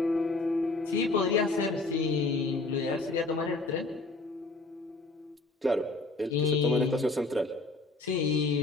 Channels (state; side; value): quieter; right; 3.2 dB